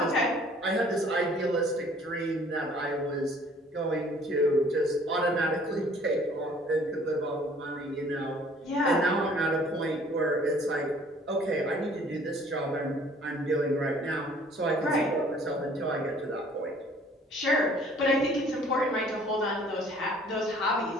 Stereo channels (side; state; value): both; normal; correlation 0.55